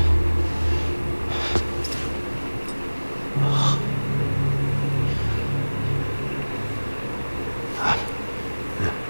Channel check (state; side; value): inverted; both; correlation -1.00